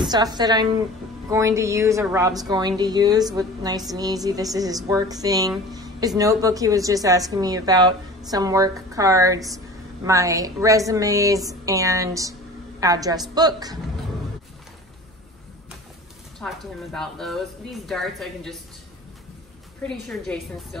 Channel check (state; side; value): normal; both; correlation 0.39